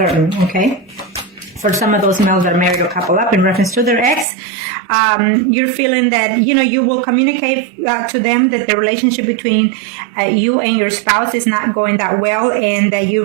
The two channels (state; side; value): drops out; left; at 4.2 s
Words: okay? For some of those males that are married or couple up in reference to their ex, you're feeling that, you will communicate to them that the relationship between you and your spouse is not going that well, and that you